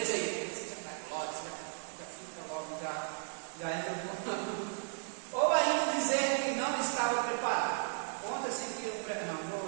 aí? Você já cai glória, já fica logo, já entra no... Ou ainda dizer que não estava preparado. Conta-se que não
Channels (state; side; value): silent; left; digital silence